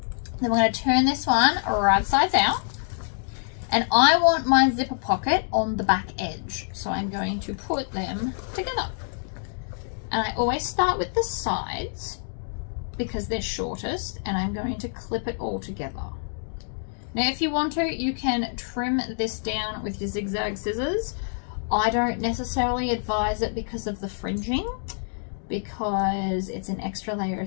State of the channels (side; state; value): right; silent; digital silence